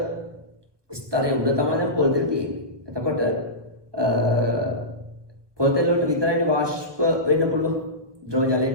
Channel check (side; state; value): left; late; 1.2 ms